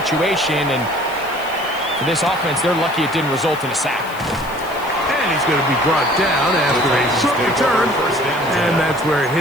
and for this offense, they're lucky it didn't result in a sack. And he's going to be brought down after a short return, and that's where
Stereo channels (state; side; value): noise; left; hiss, 19 dB below the sound